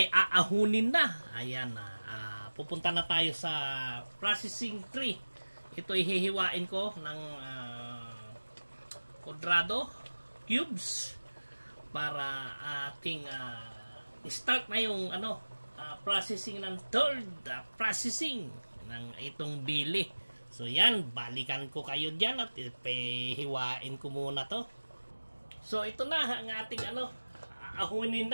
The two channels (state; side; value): inverted; both; correlation -1.00